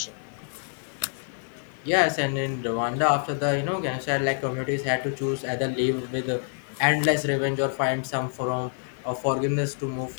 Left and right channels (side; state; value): right; silent; 60 dB below the other